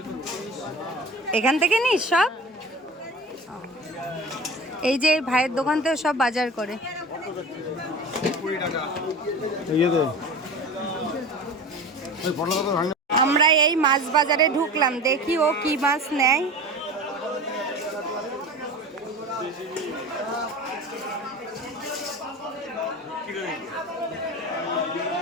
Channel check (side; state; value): both; normal; correlation 0.34